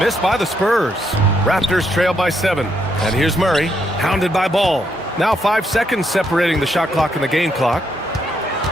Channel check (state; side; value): normal; both; correlation 0.76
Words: by the Spurs. Raptors trail by 7. And here's Murray, hounded by Ball. Now 5 seconds separating the shot clock and the game clock.